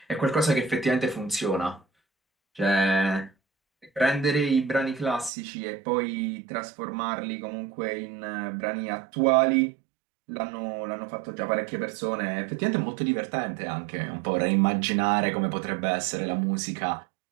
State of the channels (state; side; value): drops out; left; at 5.3 s